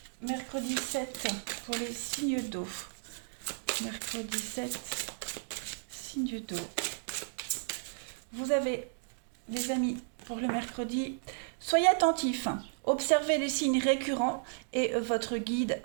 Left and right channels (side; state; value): left; silent; digital silence